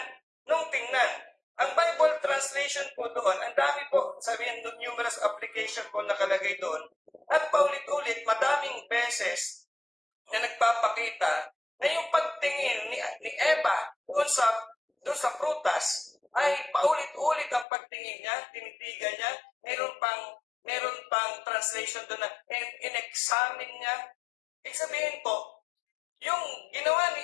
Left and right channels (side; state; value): right; drops out; at 17.7 s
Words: ang Bible translation po doon, ang dami po, sabihin numerous application po nakalagay doon, at paulit-ulit, madaming beses na nagpapakita na yung pagtingin ni Eva doon sa prutas ay paulit-ulit ang pagtingin niya, tinitigan niya, meron pang translation doon na in-examine niya. Ibig sabihin po, yung ginawa ni